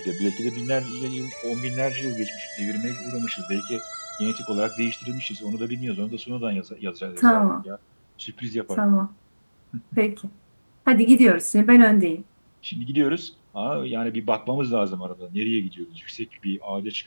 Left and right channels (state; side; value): inverted; both; correlation -1.00